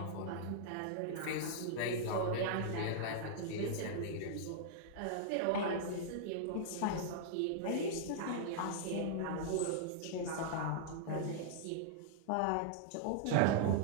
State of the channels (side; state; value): both; different; correlation -0.01